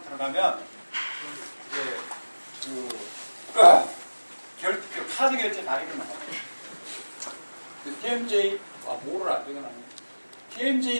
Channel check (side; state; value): both; inverted; correlation -1.00